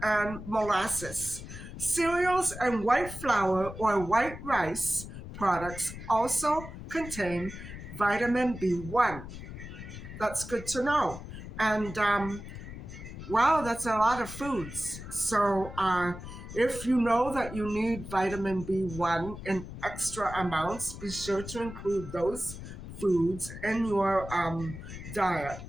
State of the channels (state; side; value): noise; left; rumble, 11 dB below the sound